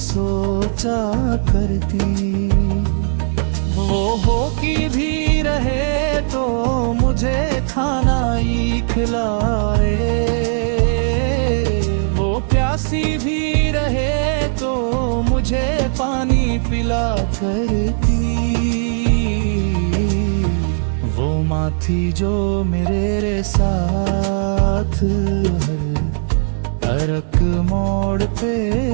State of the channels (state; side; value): silent; left; 63 dB below the other